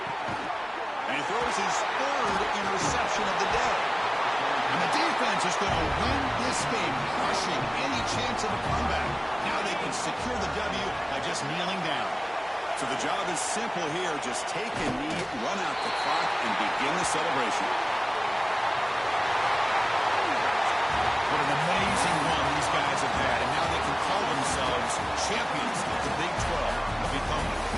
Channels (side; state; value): both; identical; correlation 1.00